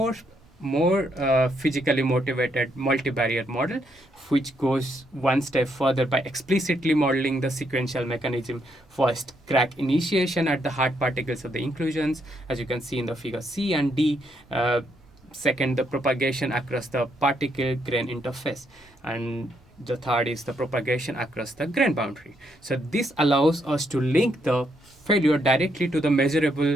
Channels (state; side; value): normal; both; correlation 0.75